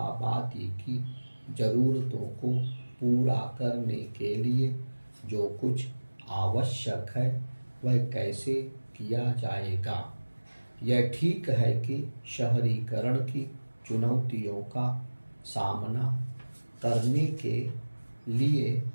की ज़रूरतों को पूरा करने के लिए जो कुछ आवश्यक है वह कैसे किया जाएगा। यह ठीक है कि शहरीकरण की चुनौतियों का सामना करने के लिए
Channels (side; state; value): both; inverted; correlation -1.00